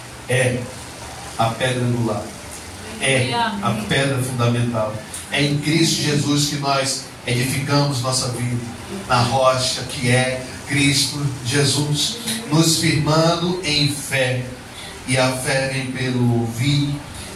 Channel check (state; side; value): identical; both; correlation 1.00